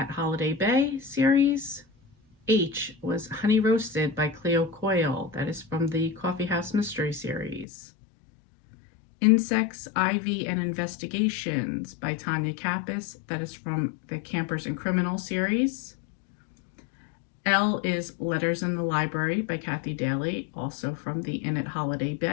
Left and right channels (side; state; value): right; drops out; at 7.7 s